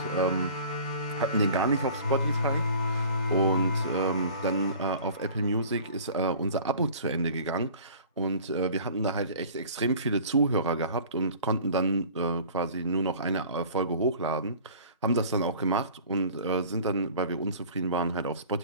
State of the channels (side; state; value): both; inverted; correlation -0.46